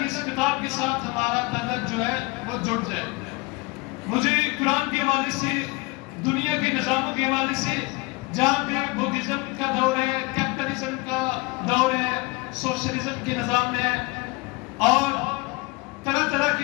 اس کتاب کے ساتھ ہمارا تعلق جو ہے وہ جڑ جائے۔ مجھے قرآن کے حوالے سے، دنیا کے نظاموں کے حوالے سے، جہاں پہ بدھزم کا دور ہے، کیپٹلزم کا دور ہے، سوشلزم کے نظام ہے، اور طرح طرح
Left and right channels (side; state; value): right; quieter; 25.3 dB